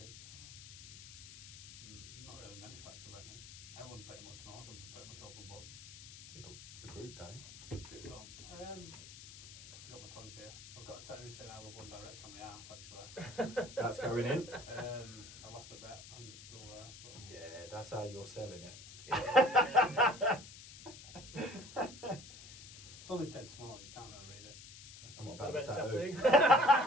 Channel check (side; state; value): left; noise; hiss, 15 dB below the sound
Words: Not really many facts about me. Everyone pretty much knows I'm pretty much open book. Yeah, but the group don't. Still got my tongue pierced. I've got a tattoo saying I love One Direction on my ass actually. That's going in. I lost a bet and it's still there. But Yeah, that's how you're selling it. it's only dead small, you can't really read it. I'm not What about the about the